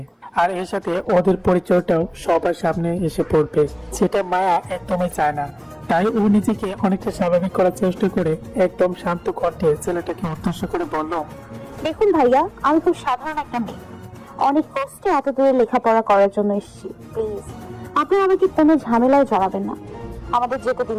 আর এর সাথে ওদের পরিচয়টাও সবার সামনে এসে পড়বে, সেটা মায়া একদমই চায় না। তাই ও নিজেকে অনেকটা স্বাভাবিক করার চেষ্টা করে একদম শান্ত কণ্ঠে ছেলেটাকে উদ্দেশ্য করে বলল, দেখুন ভাইয়া, আমি খুব সাধারণ একটা মেয়ে, অনেক কষ্টে এত দূরে লেখাপড়া করার জন্য এসেছি। প্লিজ আপনি আমাকে কোনো ঝামেলায় জড়াবেন না, আমাদের যেতে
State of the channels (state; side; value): identical; both; correlation 1.00